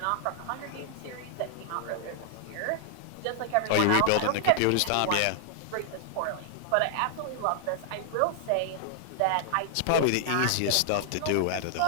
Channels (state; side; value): different; both; correlation 0.00